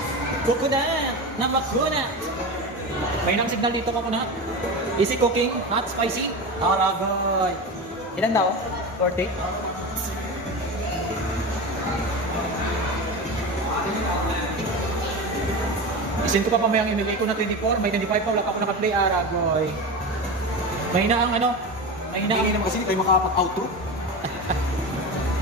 Coconut! Namakuna! May nang signal dito coconut. Easy cooking, not spicy. Aragay! Ilan daw? 40? Isin ko pa pamayang imigay ko na 24, may 25 pa, wala pa ako naka-play, Aragoy. Mahina ang ano? Mahina ang... Hindi naman kasi hindi tayo makapag-outro.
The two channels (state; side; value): normal; both; correlation 0.24